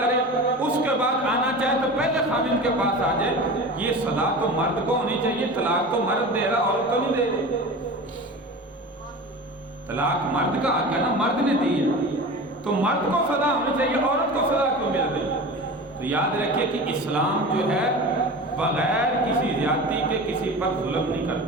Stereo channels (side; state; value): both; normal; correlation 0.33